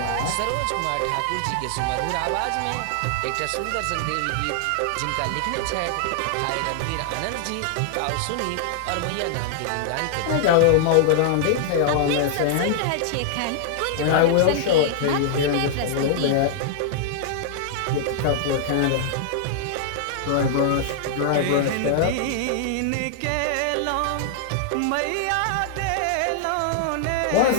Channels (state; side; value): different; both; correlation -0.01